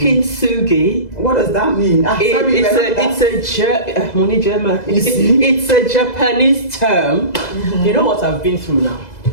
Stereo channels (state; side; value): late; right; 2.0 ms